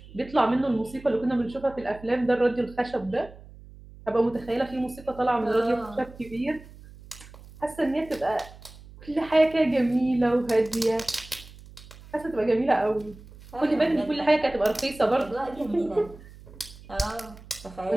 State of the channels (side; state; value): right; noise; hum, 19 dB below the sound